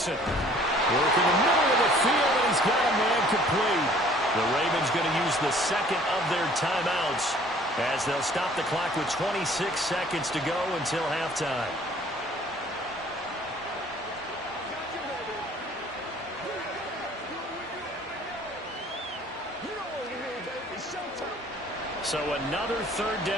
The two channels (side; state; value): both; normal; correlation 0.55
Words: Working the middle of the field, and he's got a man complete. The Ravens going to use the 2nd of their timeouts as they'll stop the clock with 26 seconds to go until halftime. So another 3rd